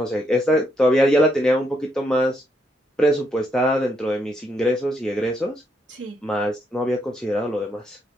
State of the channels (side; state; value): both; normal; correlation 0.77